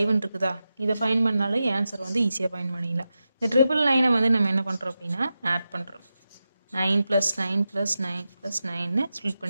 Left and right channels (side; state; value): both; inverted; correlation -0.91